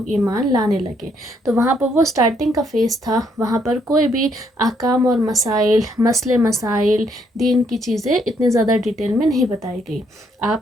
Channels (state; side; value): normal; both; correlation 0.71